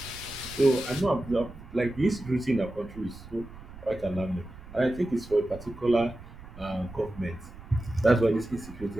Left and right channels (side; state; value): right; noise; rumble, 16 dB below the sound